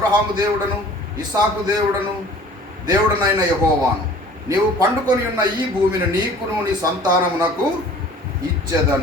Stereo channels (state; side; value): normal; both; correlation 0.48